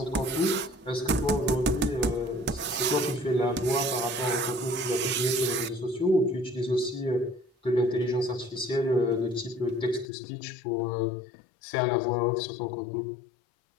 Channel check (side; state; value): right; drops out; at 10.1 s